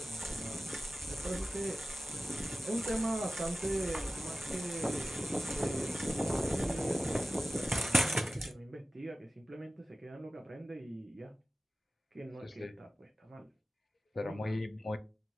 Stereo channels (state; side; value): normal; both; correlation 0.96